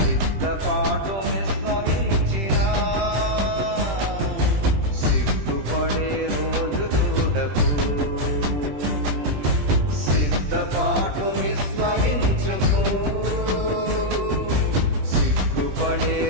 సిద్ధపాటు విశ్వసించినా సిగ్గుపడే రోజు చూడకు. సిద్ధపాటు విశ్వసించుకో, సిగ్గుపడే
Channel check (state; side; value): late; left; 20 ms